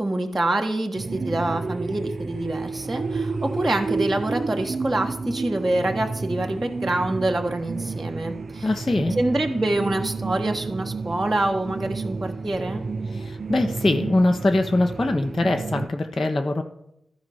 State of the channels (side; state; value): both; normal; correlation 0.94